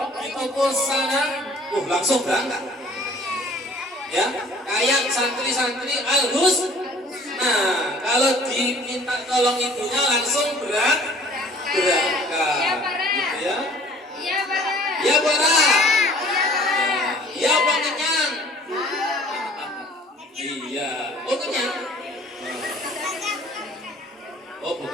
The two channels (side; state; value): both; normal; correlation 0.52